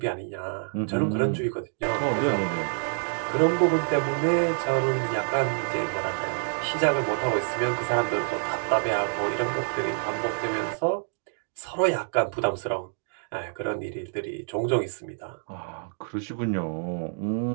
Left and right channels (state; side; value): silent; left; digital silence